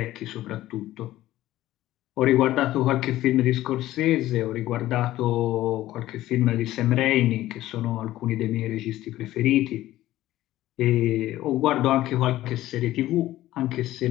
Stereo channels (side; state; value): right; quieter; 15.0 dB